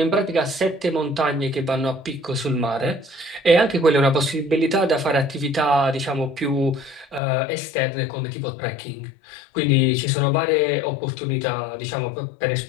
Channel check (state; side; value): drops out; right; at 7.2 s